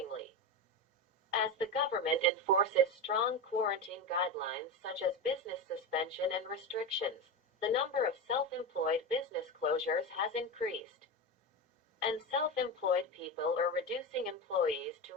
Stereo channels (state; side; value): normal; both; correlation 0.19